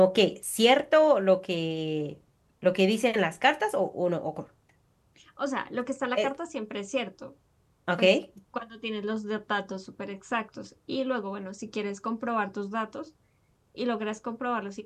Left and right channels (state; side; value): identical; both; correlation 1.00